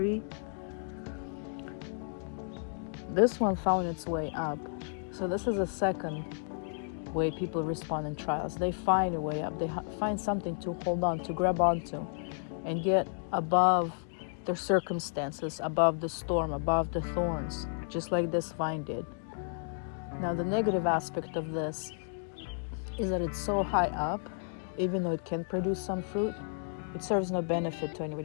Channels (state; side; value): silent; right; digital silence